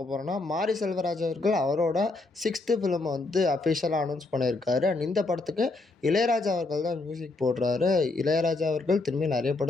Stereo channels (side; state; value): right; quieter; 3.3 dB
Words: போகிறோம்னா, மாரி செல்வராஜ் அவர்கள் அவரோட 6th ஃபிலிமை வந்து அஃபிஷியலாக அனௌன்ஸ் பண்ணியிருக்காரு. அண்ட் இந்த படத்துக்கு இளையராஜா அவர்கள் தான் மியூசிக் போடுறாரு. இளையராஜா அவர்கள் திரும்பி நிறைய